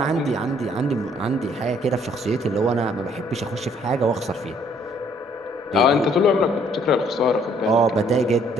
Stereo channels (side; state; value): both; normal; correlation 0.64